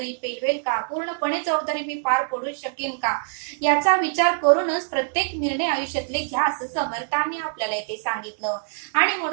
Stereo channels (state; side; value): silent; left; digital silence